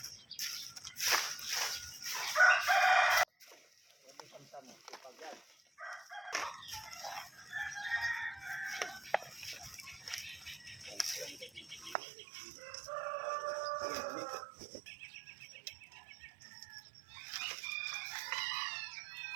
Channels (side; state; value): left; drops out; at 12.0 s